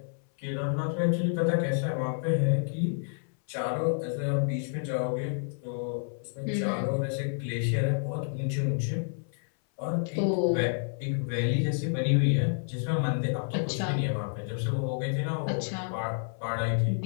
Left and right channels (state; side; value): silent; right; 58 dB below the other